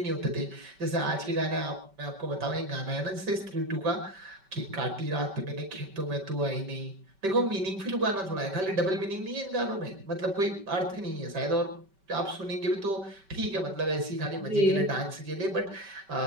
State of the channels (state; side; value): late; left; 5.2 ms